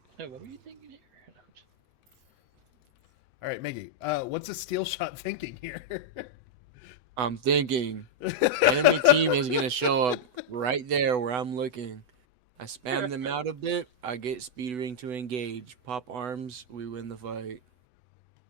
Hey, what were you thinking here? All right, Miggy. What's a steel shot thinking here? I'm thinking enemy team is gonna show up right there where I'm looking. I spam them out a bit. I get speed ring to engage. Pop arms. We win the fight.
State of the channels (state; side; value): late; left; 8.0 ms